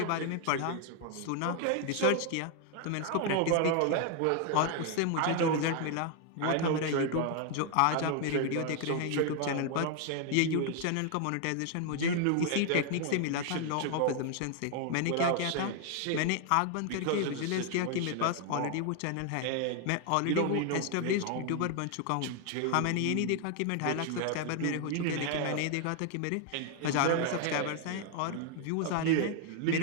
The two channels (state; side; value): different; both; correlation 0.00